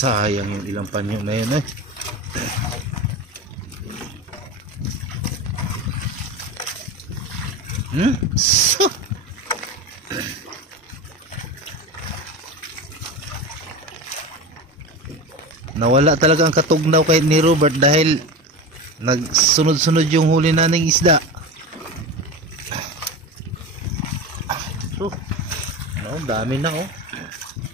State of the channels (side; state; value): both; normal; correlation 0.26